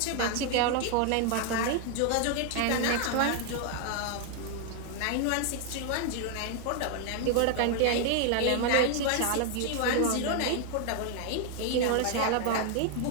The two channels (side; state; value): both; different; correlation 0.00